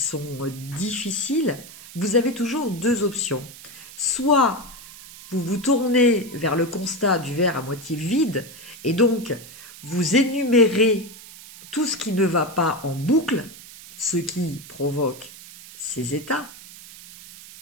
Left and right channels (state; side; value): noise; right; hiss, 17 dB below the sound